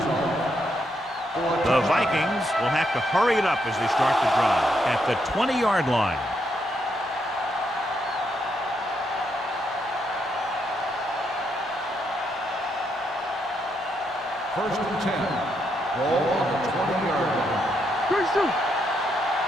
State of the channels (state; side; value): normal; both; correlation 0.78